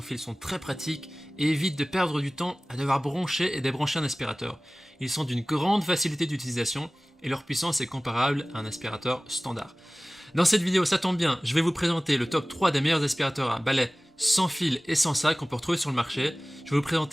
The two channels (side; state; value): both; normal; correlation 0.98